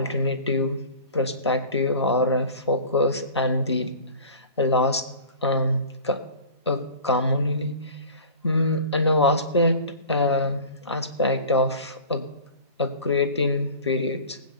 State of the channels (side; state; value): both; inverted; correlation -0.39